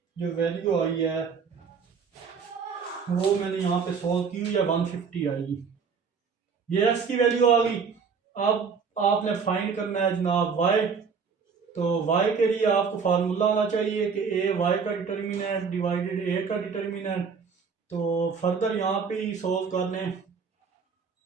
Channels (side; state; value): left; quieter; 5.8 dB